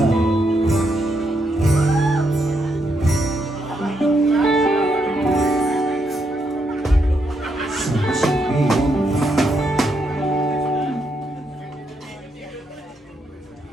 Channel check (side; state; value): both; normal; correlation 0.79